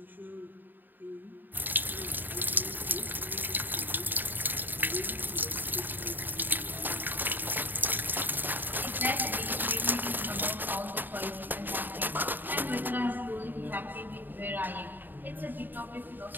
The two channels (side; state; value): left; late; 0.091 ms